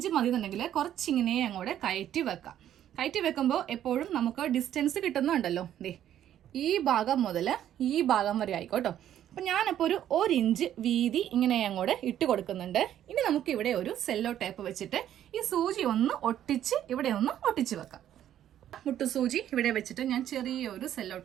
മതി എന്നുണ്ടെങ്കിൽ കുറച്ചിങ്ങനെ അങ്ങോട്ട് കയറ്റി വെക്കാം. കയറ്റി വെക്കുമ്പോൾ എപ്പോഴും നമുക്ക് ഡിസ്റ്റൻസ് കിട്ടുന്നുണ്ടല്ലോ. ഈ ഭാഗം മുതൽ ഈ ഭാഗം വരെ ആയിക്കോട്ടോ. അപ്പൊ ഞാനിപ്പോ ഒരു 1 ഇഞ്ച് വീതി ഇങ്ങനെ അങ്ങോട്ട് ഇട്ട് കൊടുക്കുന്നുണ്ട്. ഇനി നമുക്ക് ഇവിടെ ഒരു സെല്ലോ ടേപ്പ് വെച്ചിട്ട് ഈ സൂചി ഒന്ന് ഒട്ടിച്ച് ഇവിടെ ഒന്ന് ഒട്ടിച്ച് വെക്കാം. മുട്ടുസൂചി ഇവിടെ വെച്ചിട്ട് ഞാൻ ചെറിയൊരു സെല്ലോ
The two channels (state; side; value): quieter; left; 11.1 dB